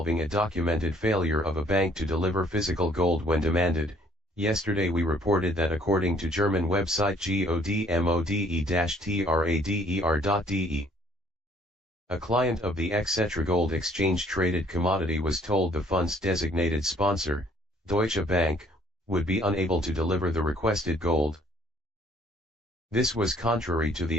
a documented failure of a bank to deliver physical gold when demanded, yesterday we reported that according to German website godmode-trader.de, a client of the etc. Gold exchange traded commodity was told the fund's designated sponsor, Deutsche Bank, would be unable to deliver the requested gold. This was contrary to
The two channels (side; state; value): both; normal; correlation 0.60